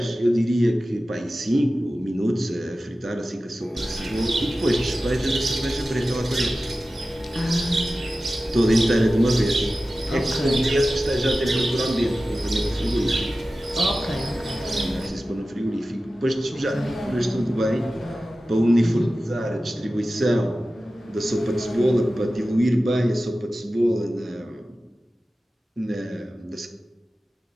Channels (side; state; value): both; normal; correlation 0.95